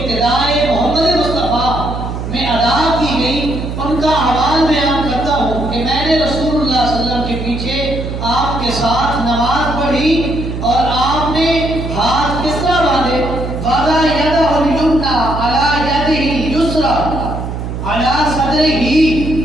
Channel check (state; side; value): noise; right; hum, 5 dB below the sound